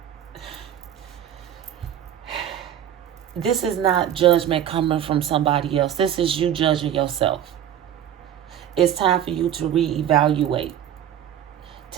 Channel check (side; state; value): left; quieter; 10.2 dB